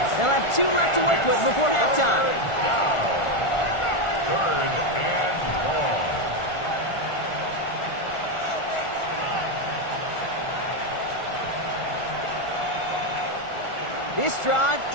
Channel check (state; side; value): late; right; 1.4 ms